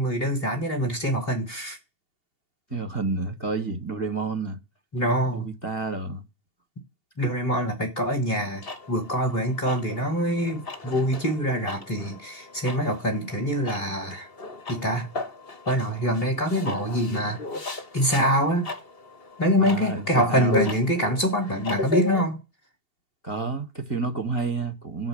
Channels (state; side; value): late; right; 2.8 ms